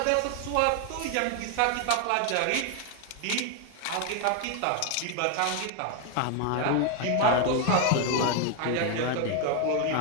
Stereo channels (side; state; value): both; different; correlation 0.01